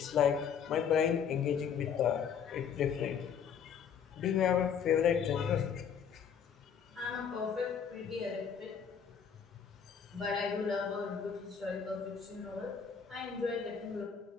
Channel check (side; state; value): right; quieter; 7.3 dB